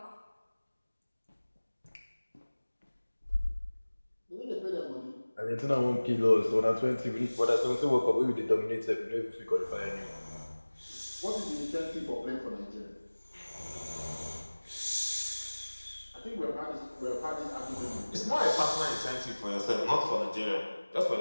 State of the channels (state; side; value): inverted; both; correlation -1.00